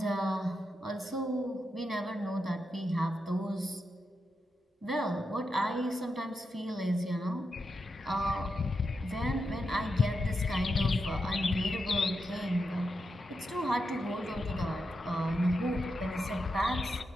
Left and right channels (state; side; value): normal; both; correlation 0.86